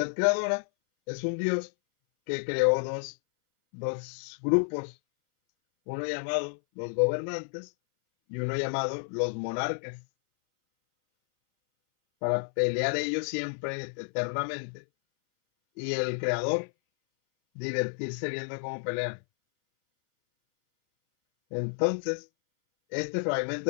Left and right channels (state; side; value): silent; right; 58 dB below the other